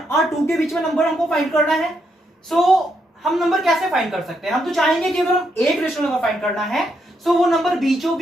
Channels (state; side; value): normal; both; correlation 0.78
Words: और 2 के बीच में नंबर हमको फाइंड करना है। सो हम नंबर कैसे फाइंड कर सकते हैं? हम तो चाहेंगे कि अगर हम एक रैशनल नंबर फाइंड करना है सो वो नंबर बीचों